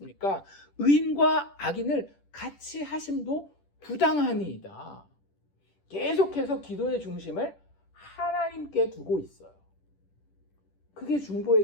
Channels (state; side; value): late; right; 10 ms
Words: 의인과 악인을 같이 하심도 부당하니이다. 계속해서 기도의 중심을 하나님께 두고 있어요. 그게